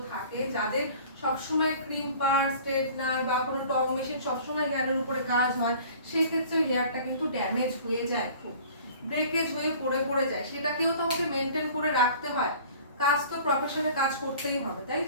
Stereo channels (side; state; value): both; inverted; correlation -0.47